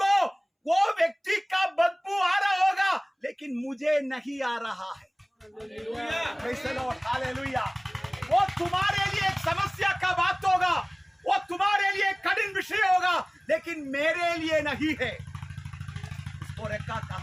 वो व्यक्ति का बदबू आ रहा होगा, लेकिन मुझे नहीं आ रहा है। Praise the Lord, hallelujah. वो तुम्हारे लिए एक समस्या का बात होगा, वो तुम्हारे लिए कठिन विषय होगा, लेकिन मेरे लिए नहीं है। उसको रेखा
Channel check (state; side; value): identical; both; correlation 1.00